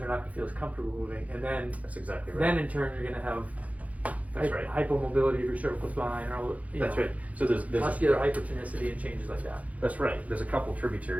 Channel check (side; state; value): left; late; 0.069 ms